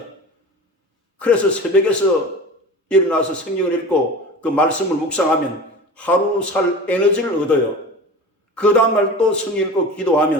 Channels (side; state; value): both; normal; correlation 0.34